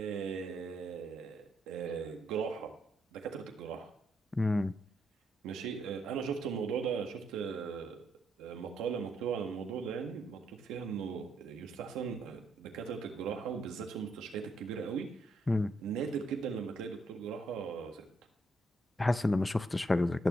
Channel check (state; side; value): normal; both; correlation 0.76